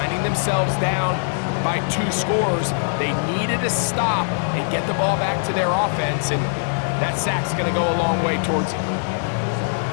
themselves down by 2 scores. They needed to stop and get the ball back to their offense, and that sack's going to go a long way towards it.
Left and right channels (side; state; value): right; silent; digital silence